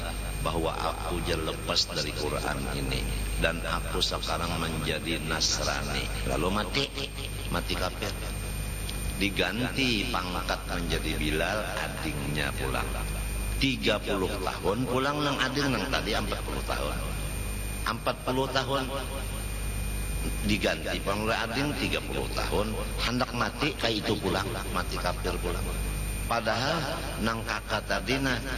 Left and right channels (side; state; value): both; identical; correlation 1.00